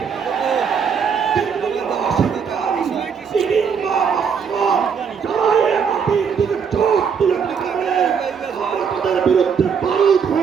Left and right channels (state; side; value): quieter; left; 6.6 dB